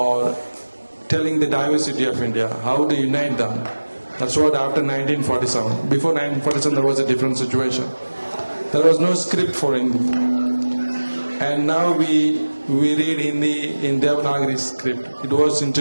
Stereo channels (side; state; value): both; inverted; correlation -1.00